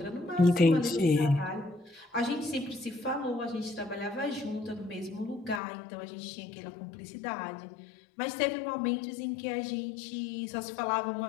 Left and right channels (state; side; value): drops out; right; at 5.6 s